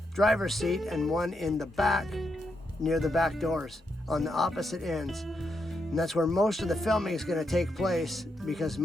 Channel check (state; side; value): normal; both; correlation 0.82